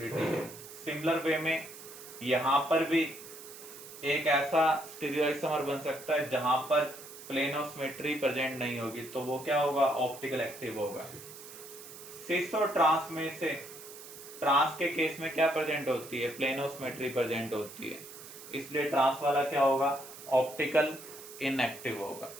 है। सिमिलर वे में यहां पर भी एक ऐसा स्टीरियोआइसोमर बन सकता है जहां पर प्लेन ऑफ सिमेट्री प्रेजेंट नहीं होगी, तो वो क्या होगा ऑप्टिकल एक्टिव होगा। सिस और ट्रांस में से ट्रांस के केस में क्या प्रेजेंट होती है प्लेन ऑफ सिमेट्री प्रेजेंट होती है, इसलिए ट्रांस वाला क्या होगा ऑप्टिकल इनएक्टिव होगा।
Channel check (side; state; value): right; noise; hiss, 15 dB below the sound